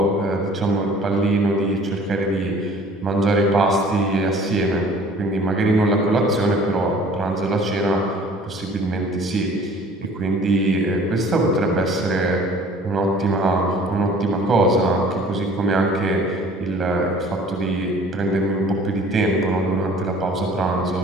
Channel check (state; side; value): normal; both; correlation 0.50